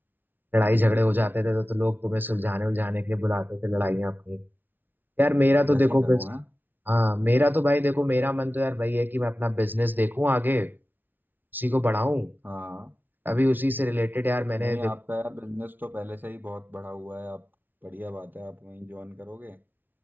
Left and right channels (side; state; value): left; late; 0.089 ms